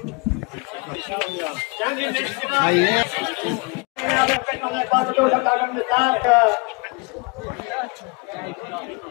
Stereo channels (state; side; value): quieter; right; 30.4 dB